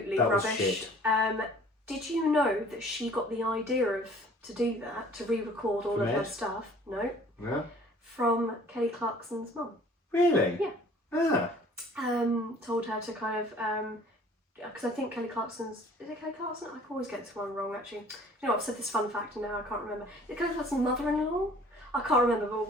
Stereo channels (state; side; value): normal; both; correlation 0.52